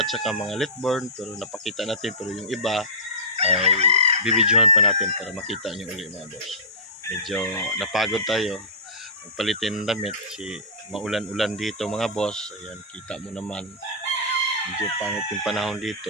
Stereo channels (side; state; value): both; normal; correlation -0.17